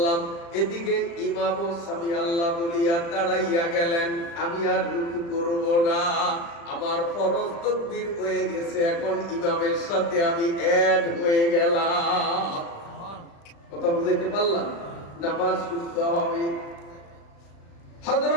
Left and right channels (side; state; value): right; late; 35 ms